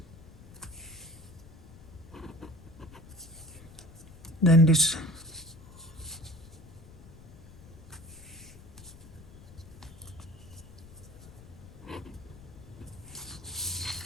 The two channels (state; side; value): noise; left; rumble, 18 dB below the sound